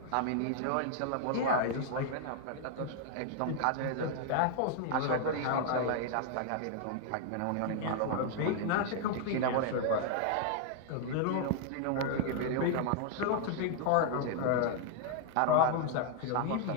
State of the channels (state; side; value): different; both; correlation 0.00